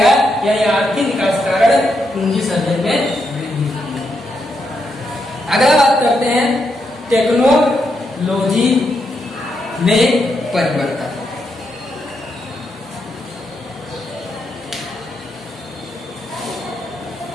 यानी आर्थिक विकास के कारण पूंजी सर्जन में वृद्धि। अगला बात करते हैं टेक्नोलॉजी में परिवर्तन।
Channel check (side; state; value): both; normal; correlation 0.81